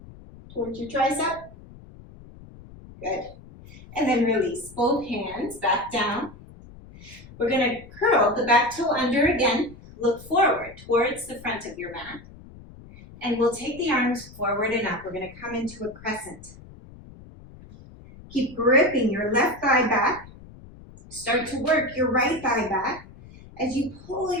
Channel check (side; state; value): left; noise; rumble, 19 dB below the sound